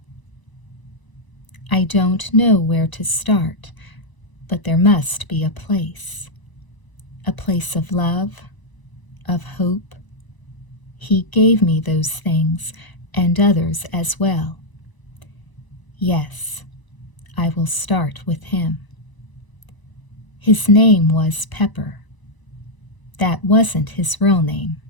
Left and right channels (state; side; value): late; right; 1.0 ms